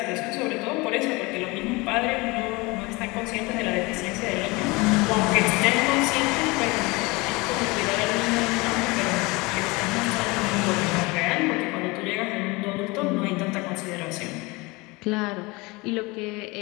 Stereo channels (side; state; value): right; quieter; 24.6 dB